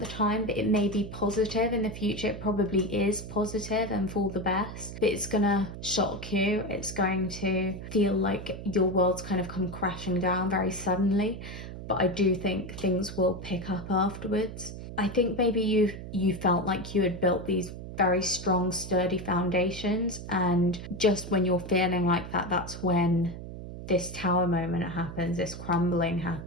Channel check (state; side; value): noise; right; hum, 10 dB below the sound